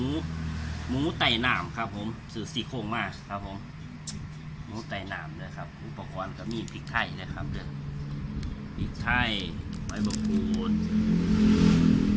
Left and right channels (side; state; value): both; identical; correlation 1.00